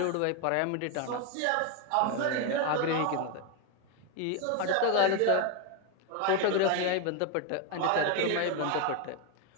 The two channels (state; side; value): different; both; correlation 0.02